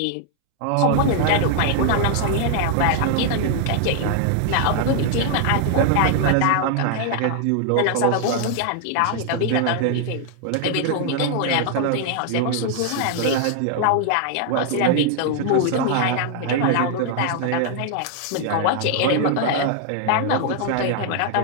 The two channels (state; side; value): different; both; correlation 0.00